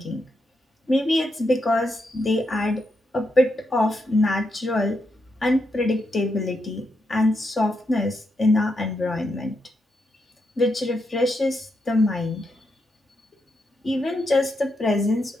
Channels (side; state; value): both; normal; correlation 0.82